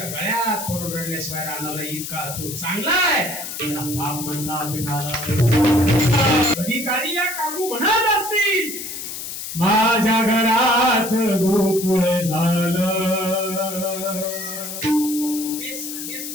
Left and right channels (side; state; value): left; noise; hiss, 7 dB below the sound